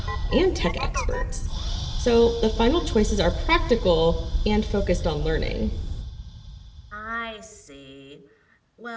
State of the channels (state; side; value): identical; both; correlation 1.00